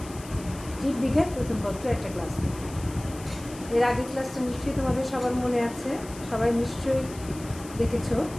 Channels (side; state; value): left; noise; hiss, 17 dB below the sound